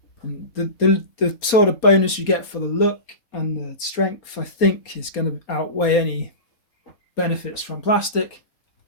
And the sort of bonus you get for the look and the strength, I think, is going to outweigh any benefits from plastic.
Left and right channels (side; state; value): right; late; 4.3 ms